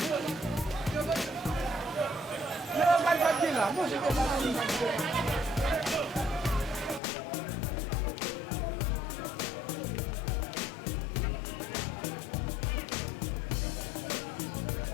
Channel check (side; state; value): right; drops out; at 7.0 s